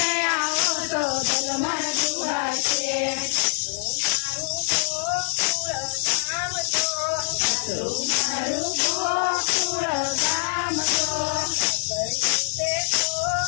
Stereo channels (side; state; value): right; silent; digital silence